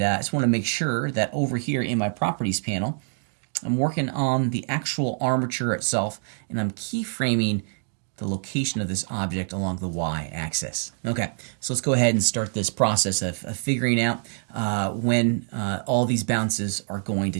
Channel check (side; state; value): left; silent; 61 dB below the other